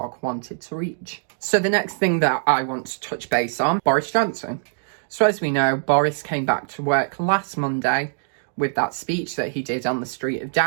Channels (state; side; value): silent; left; digital silence